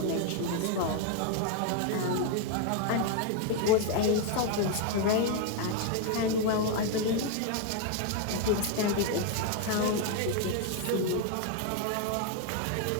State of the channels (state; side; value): different; both; correlation 0.01